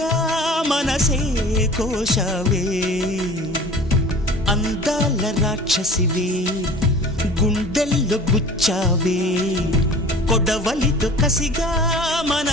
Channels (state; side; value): normal; both; correlation 0.43